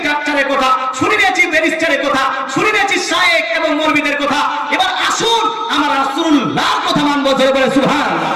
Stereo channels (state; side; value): identical; both; correlation 1.00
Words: ডাক্তারের কথা, শুনে নিয়েছি ব্যারিস্টারের কথা, শুনে নিয়েছি শায়েখ এবং মরবিদের কথা। এবার আসুন আমরা রাসূলুল্লাহর কথা মানবো। জোরে বলে সুবহানাল্লাহ।